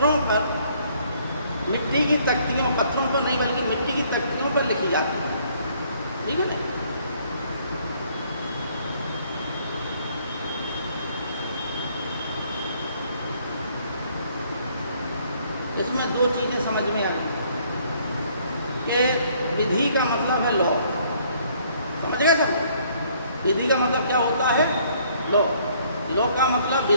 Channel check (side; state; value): both; inverted; correlation -0.63